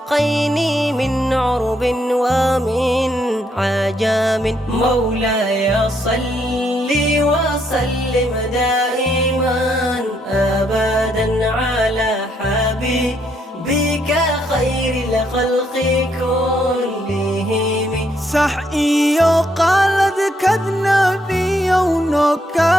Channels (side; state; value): both; normal; correlation 0.73